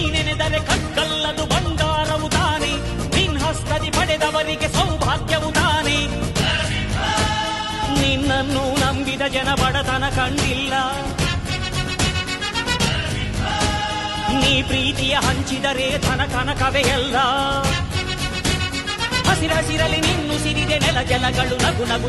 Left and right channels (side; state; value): both; identical; correlation 1.00